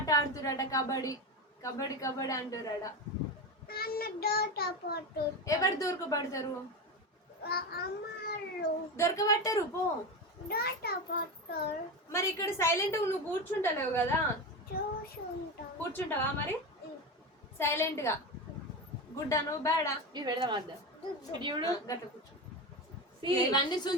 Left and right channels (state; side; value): normal; both; correlation 0.20